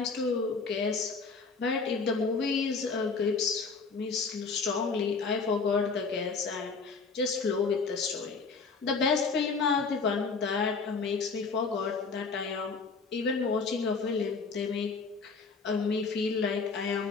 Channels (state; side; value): quieter; right; 4.7 dB